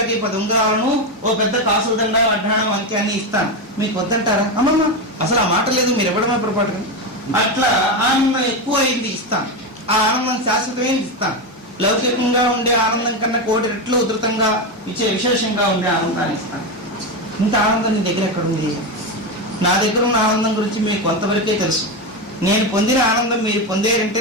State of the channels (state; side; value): normal; both; correlation 0.13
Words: 10 ఉంగరాలను ఓ పెద్ద కాసుల దండ అడ్డాణం అంత్యాన్ని ఇస్తాను, మీకు వద్దంటారా? అమ్మమ్మ అసలు ఆ మాట లేదు, మీరు ఇవ్వడమే పొరపాటు. అట్లా ఆనందం ఎక్కువ అయింది ఇస్తాను, ఆ ఆనందం శాశ్వతమైంది ఇస్తాను. లౌకికంగా ఉండే ఆనందం కన్నా 1,000 రెట్లు ఉధృతంగా ఇచ్చే విశేషంగా ఉండే ఆనందాన్ని ఇస్తాను. ఇంత ఆనందం నీ దగ్గర ఎక్కడుంది? నా దగ్గర ఉన్న ఆనందం గురించి మీకు కొంతవరకే తెలుసు. నేను పొందిన ఆనందం మీరు పొందేరంటే